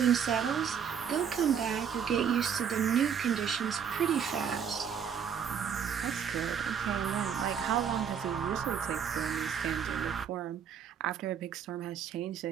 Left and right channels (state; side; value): quieter; left; 7.6 dB